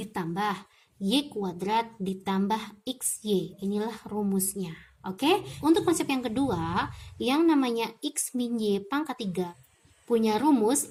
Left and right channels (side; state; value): both; identical; correlation 1.00